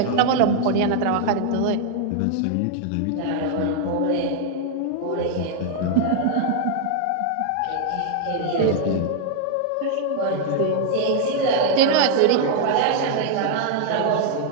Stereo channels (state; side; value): different; both; correlation 0.00